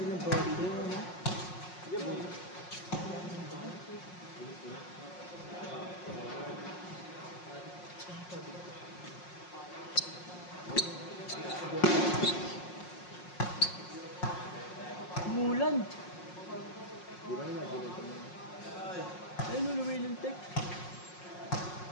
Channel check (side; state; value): right; late; 5.5 ms